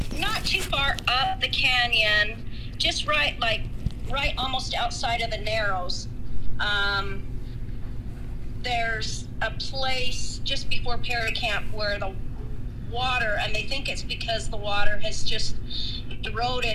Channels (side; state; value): both; identical; correlation 1.00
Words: not too far up the canyon, just right almost outside of the Narrows. There's a place just before Perry Camp where the water, and they think it's because the water has just